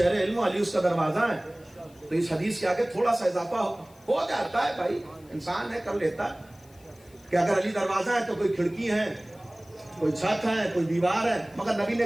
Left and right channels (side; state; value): left; noise; hiss, 28 dB below the sound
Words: علم علی اس کا دروازہ ہے. تو اس حدیث کے آگے تھوڑا سا اضافہ ہو جاتا ہے. بھائی انسان ہے، کر لیتا کہ اگر علی دروازہ ہے تو کوئی کھڑکی ہے، کوئی چھت ہے، کوئی دیوار ہے. مگر نبی